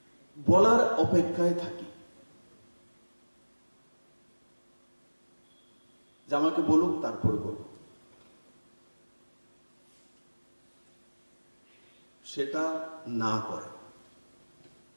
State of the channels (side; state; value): both; inverted; correlation -1.00